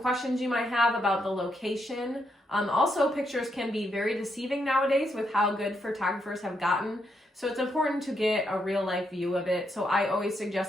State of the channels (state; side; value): normal; both; correlation 0.79